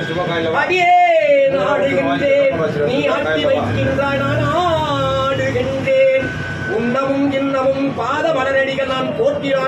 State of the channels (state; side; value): identical; both; correlation 1.00